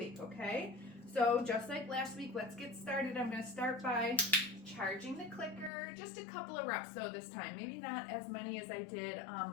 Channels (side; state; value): right; drops out; at 5.7 s